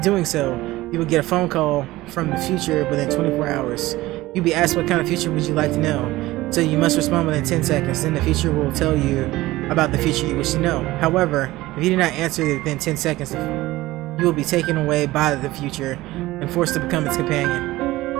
so, you will get a phone call from the future within 24 hours. You'll be asked what kind of future would you like to know, so you must respond within 10 seconds. Then the future will tell you about the future you wish to know. However, if you do not answer within 10 seconds, you will be taken away by the future and forced to become its companion.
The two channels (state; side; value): quieter; left; 17.9 dB